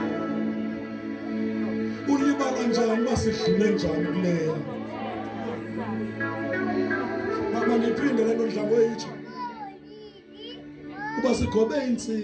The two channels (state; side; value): identical; both; correlation 1.00